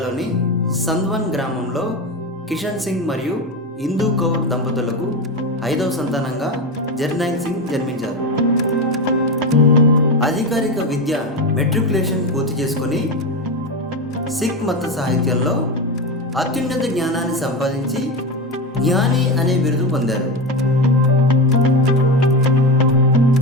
సంద్వన్ గ్రామంలో కిషన్ సింగ్ మరియు ఇందూ కౌర్ దంపతులకు 5వ సంతానంగా జర్నైల్ సింగ్ జన్మించారు. అధికారిక విద్య మెట్రికులేషన్ పూర్తి చేసుకుని సిక్ మత సాహిత్యంలో అత్యున్నత జ్ఞానాన్ని సంపాదించి జ్ఞాని అనే బిరుదు పొందారు.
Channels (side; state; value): both; normal; correlation 0.18